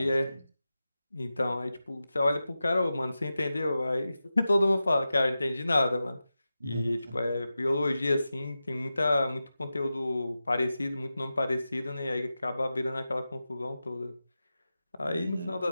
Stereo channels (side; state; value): both; inverted; correlation -0.93